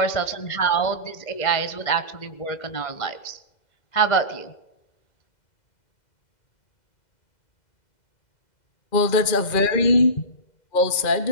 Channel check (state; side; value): late; right; 2.0 ms